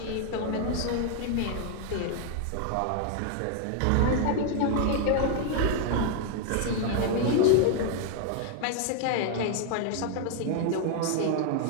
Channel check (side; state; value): both; different; correlation 0.00